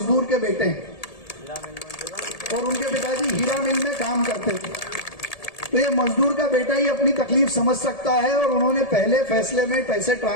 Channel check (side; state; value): right; late; 1.7 ms